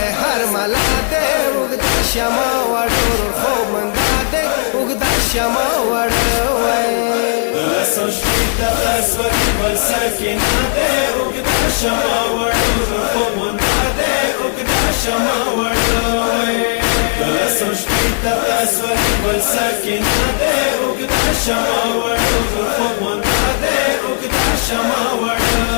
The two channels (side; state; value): right; silent; digital silence